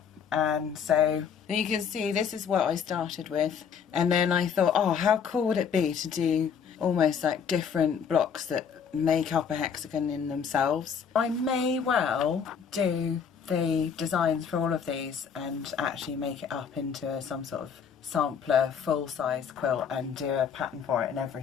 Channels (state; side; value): quieter; right; 7.0 dB